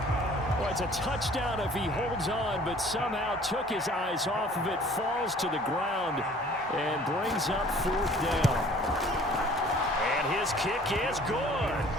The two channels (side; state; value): both; normal; correlation 0.52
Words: Well, it's a touchdown if he holds on, but somehow took his eyes off of it, falls to the ground, and brings up 4th down. And his kick is good.